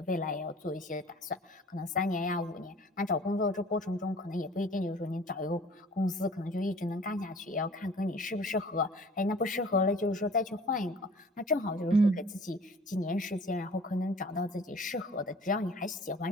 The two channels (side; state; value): both; normal; correlation 0.48